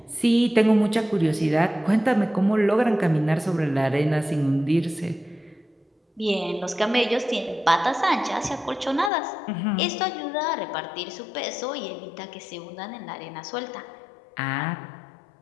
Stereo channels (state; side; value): drops out; right; at 9.1 s